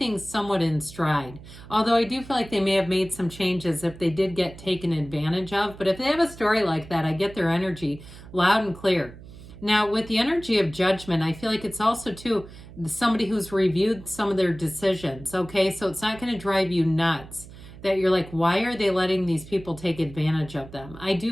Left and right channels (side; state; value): right; noise; hum, 17 dB below the sound